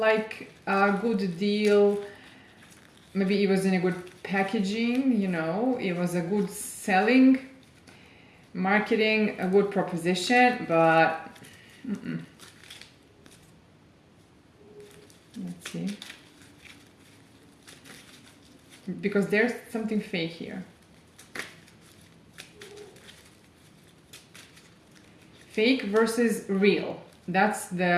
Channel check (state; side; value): identical; both; correlation 1.00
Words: a good deal. Maybe it was in a good packaging, it was a good selling, marketing, a good proposition, but let's see. Because there's something fake here. Fake versus real. That's